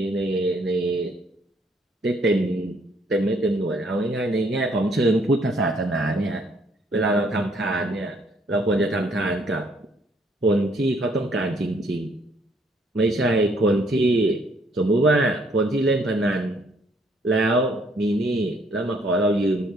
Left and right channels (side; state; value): both; normal; correlation 0.66